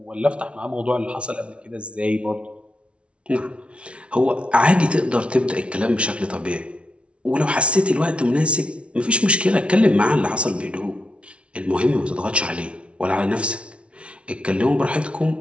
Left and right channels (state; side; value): late; left; 0.060 ms